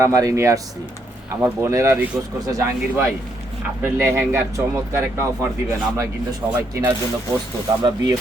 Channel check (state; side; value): normal; both; correlation 0.75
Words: নিয়ে আসছি। আমার বোনেরা রিকোয়েস্ট করছে, জাহাঙ্গীর ভাই আপনার লেহেঙ্গার চমৎকার একটা অফার দিবেন, আমরা কিন্তু সবাই কেনার জন্য প্রস্তুত, আমরা বিয়ে